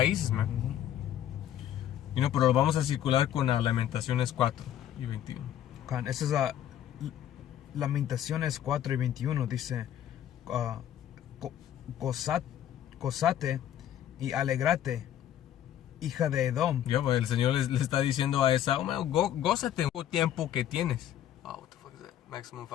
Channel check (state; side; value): quieter; right; 11.1 dB